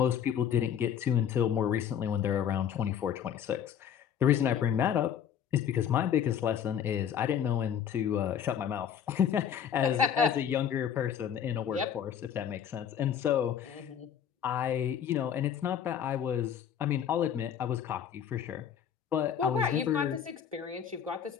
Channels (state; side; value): quieter; right; 8.6 dB